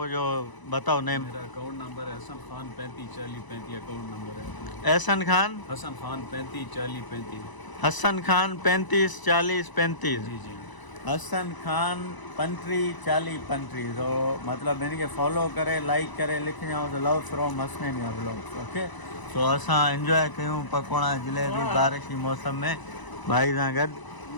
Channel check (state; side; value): late; right; 1.0 ms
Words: जो बताओ नेम। मेरा अकाउंट नंबर है हसन खान 354035 अकाउंट नंबर है। एहसन खान हसन खान 354035। हसन खान 354035। जी जी हसन खान 354035। तो मतलब इनके फॉलो करे लाइक करे लिखी जाओ तो लव फ्रॉम हसनैनिया ब्लॉग्स। ओके तो असां एंजॉय कयूं पकौड़ा जलेबी बारिश की मौसम में भाई सां गॾु।